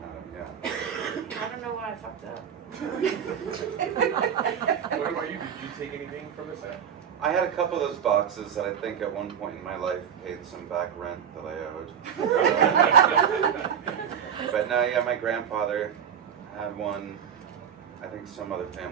them. Yeah. I don't know why I fucked up. What about you? Did you take anything from the set? I had a couple of those boxes that I think at one point in my life paid some back rent that I owed. But no, yeah, my grandfather had one. I think some other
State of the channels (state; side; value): quieter; left; 8.0 dB